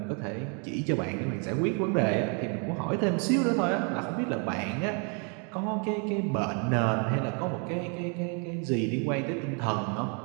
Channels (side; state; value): left; quieter; 37.4 dB